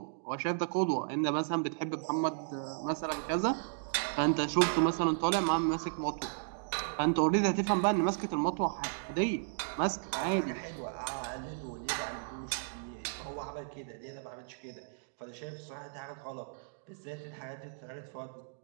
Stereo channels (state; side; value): silent; left; digital silence